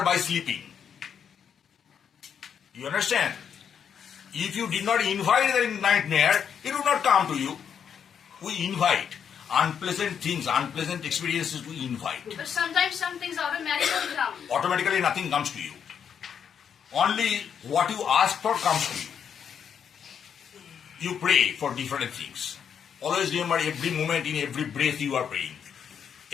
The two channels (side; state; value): right; quieter; 7.8 dB